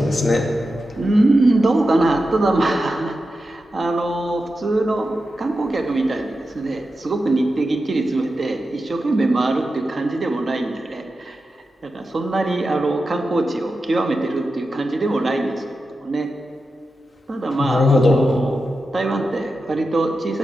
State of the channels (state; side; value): normal; both; correlation 0.91